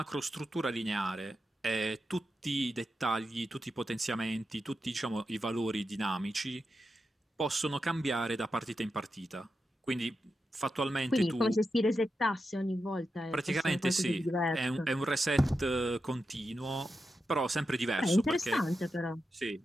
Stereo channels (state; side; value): normal; both; correlation 0.88